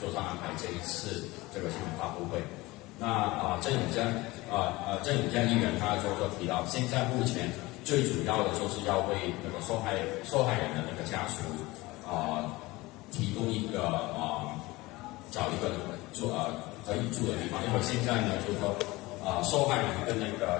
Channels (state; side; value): quieter; right; 20.9 dB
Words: 上安排这一次这个新闻发布会。那郑永江议员他就提到，现在目前最主要的就是要为那个受害人的那个家属提供一个找一个可以住的地方，因为现在呢就是说受害人跟那个